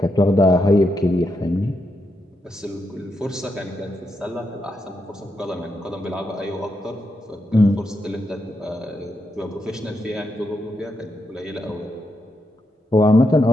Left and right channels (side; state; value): both; normal; correlation 0.83